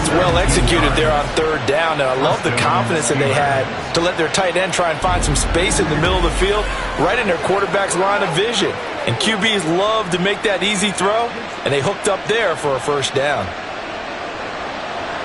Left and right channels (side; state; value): both; identical; correlation 1.00